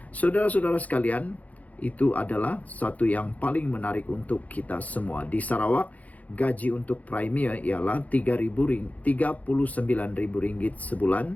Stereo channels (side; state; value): right; late; 0.073 ms